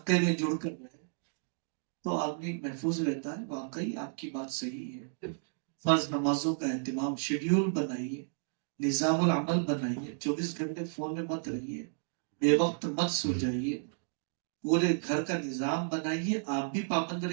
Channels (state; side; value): silent; left; digital silence